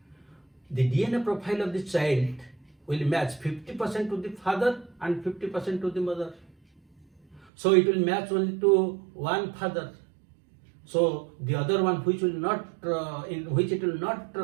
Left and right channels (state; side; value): drops out; left; at 7.4 s